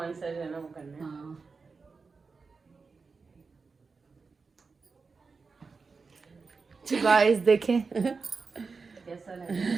सा जो है ना वो करना है। हाँ गाइस देखें, कैसा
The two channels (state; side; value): quieter; left; 4.6 dB